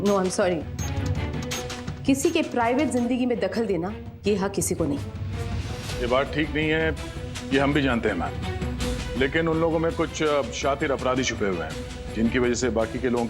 नो आई एम सॉरी, किसी के प्राइवेट जिंदगी में दखल देना ये हक किसी को नहीं। ये बात ठीक नहीं है, ये हम भी जानते हैं मैम, लेकिन उन लोगों में कुछ शातिर अपराधी छुपे हुए हैं जिनकी वजह से बाकी के लोगों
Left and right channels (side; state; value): both; identical; correlation 1.00